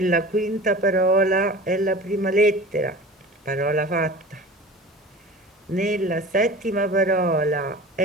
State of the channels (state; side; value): normal; both; correlation 0.38